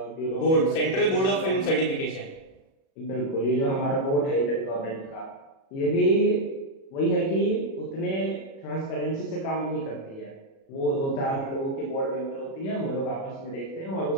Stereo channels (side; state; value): right; late; 37 ms